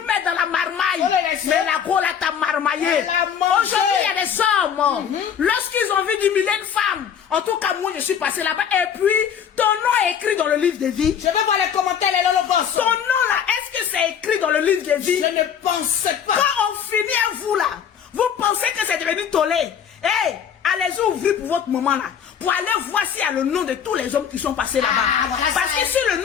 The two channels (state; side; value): quieter; right; 8.1 dB